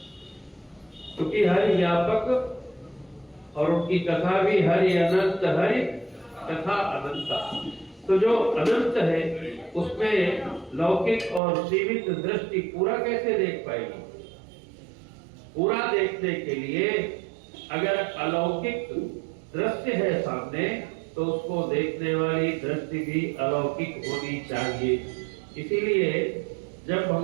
क्योंकि हरि व्यापक और उनकी कथा भी हरि अनंत, हरि कथा अनंता। तो जो अनंत है उसमें लौकिक और सीमित दृष्टि पूरा कैसे देख पाएगी? पूरा देखने के लिए अगर अलौकिक दृश्य है सामने तो उसको देखने वाली दृष्टि भी अलौकिक होनी चाहिए। इसीलिए जब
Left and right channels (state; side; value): drops out; left; at 11.4 s